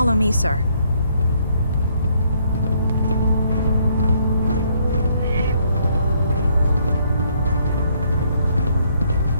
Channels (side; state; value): both; inverted; correlation -0.68